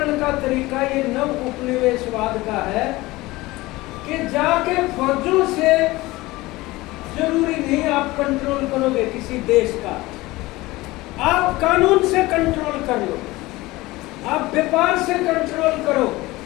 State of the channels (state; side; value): quieter; right; 19.8 dB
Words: का तरीका ये नव उपनिवेशवाद का है कि जाके फौजों से जरूरी नहीं आप कंट्रोल करोगे किसी देश का, आप कानून से कंट्रोल कर लो, आप व्यापार से कंट्रोल करो,